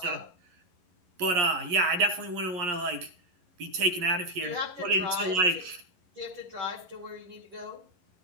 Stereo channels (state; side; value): late; left; 11 ms